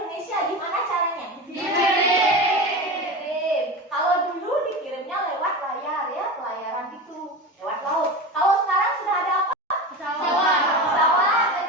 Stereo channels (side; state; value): both; normal; correlation 0.26